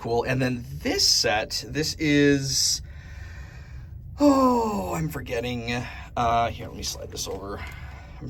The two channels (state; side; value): identical; both; correlation 1.00